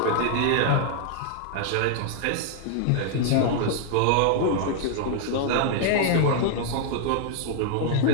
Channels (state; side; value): different; both; correlation 0.00